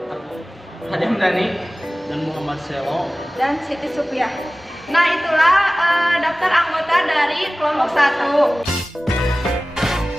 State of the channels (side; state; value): both; normal; correlation 0.97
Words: Adam Dani, dan Muhammad Selo, dan Siti Supiah. Nah, itulah daftar anggota dari kelompok 1.